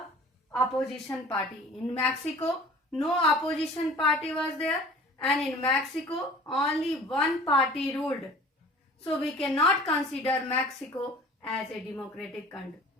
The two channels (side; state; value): both; normal; correlation 0.46